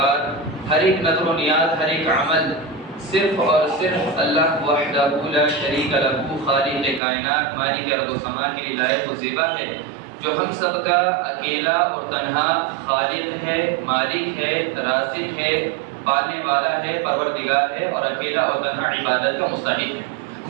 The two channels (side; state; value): left; drops out; at 7.0 s